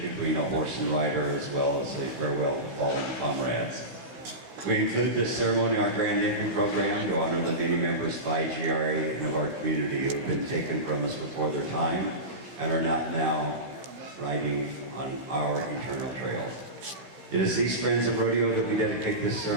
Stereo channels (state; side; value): late; left; 16 ms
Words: between a horse and rider, as well as a farewell to fallen comrades. We include this ceremony in our Grand Entry program to honor the many members of IGRA and of our community who have been taken from us before their time and are not now riding on our eternal trail. It is these friends of rodeo that we dedicate this